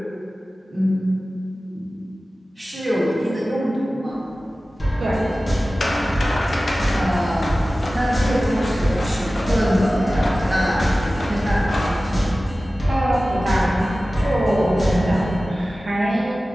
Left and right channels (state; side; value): normal; both; correlation 0.96